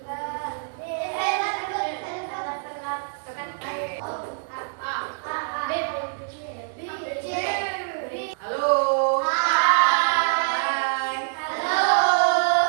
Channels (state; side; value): silent; left; 62 dB below the other